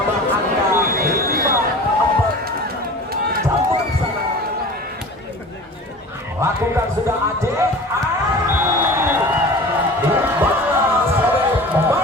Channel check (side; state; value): both; normal; correlation 0.39